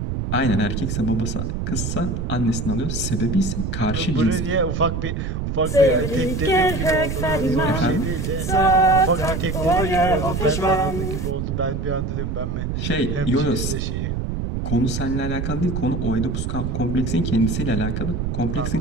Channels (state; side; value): noise; right; rumble, 2 dB below the sound